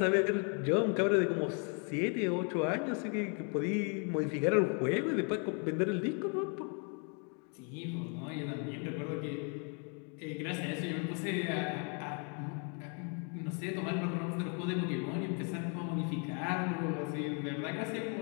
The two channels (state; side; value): quieter; right; 38.9 dB